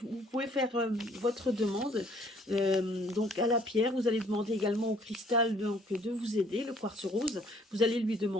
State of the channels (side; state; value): both; normal; correlation 0.60